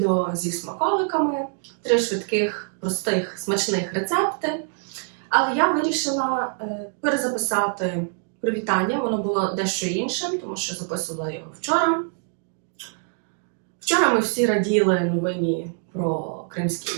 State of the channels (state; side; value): silent; left; 57 dB below the other